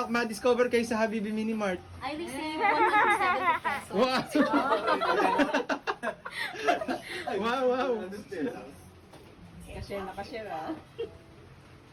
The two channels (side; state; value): both; identical; correlation 1.00